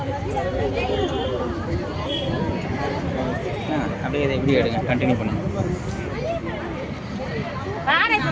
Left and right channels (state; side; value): identical; both; correlation 1.00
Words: அப்படியே இதை இப்படி எடுங்க, கண்டினியூ பண்ணுங்க.